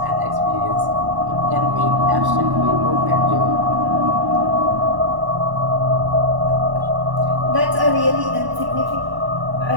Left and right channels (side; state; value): left; late; 1.1 ms